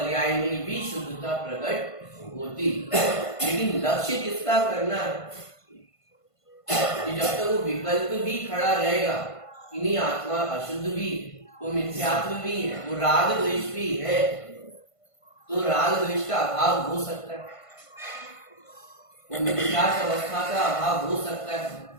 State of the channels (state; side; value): late; right; 1.5 ms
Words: में भी शुद्धता प्रकट होती। लेकिन लक्ष्य किसका करना है कि जब तक वो विकल्प भी खड़ा रहेगा, इन्हीं आत्मा अशुद्ध भी, वो मिथ्यात्व भी है, वो राग द्वेष भी है, तो राग द्वेष का अभाव हो सकता है, वो मिथ्यात्व अवस्था का अभाव हो सकता है।